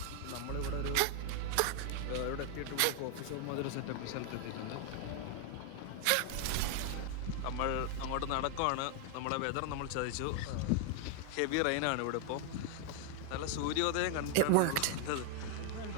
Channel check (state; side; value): different; both; correlation 0.00